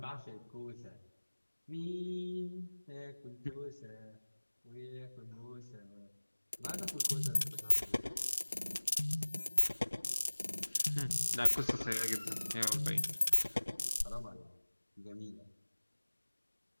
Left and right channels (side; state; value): both; inverted; correlation -1.00